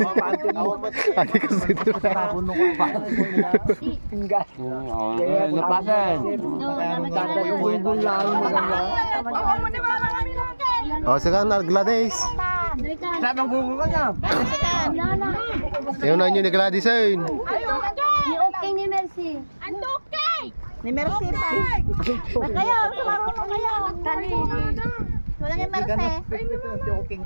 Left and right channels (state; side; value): inverted; both; correlation -1.00